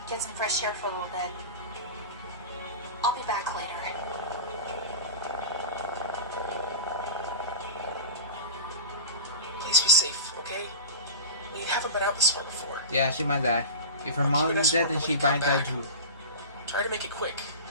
get some fresh air for a little bit. I'll be back later. Please be safe, okay? We haven't been out this far before. Yeah, she might die. If her mom is dead, then she might die too. Try to make it quick.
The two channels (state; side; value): inverted; both; correlation -0.32